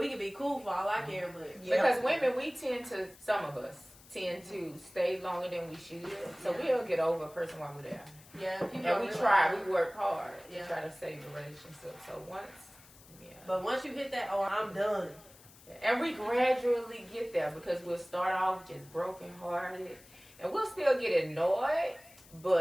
can be cool for all I care, but Because women, some of us tend to stay longer than we should. So we'll get over a person while we're there. yeah, people And don't we realize try, that. we work hard Yeah. to try to save the relationship. So But once you hit that, oh, I'm done. and we gradually get there because we'll start off just brokenhearted and we'll still get annoyed,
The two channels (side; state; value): left; noise; hiss, 23 dB below the sound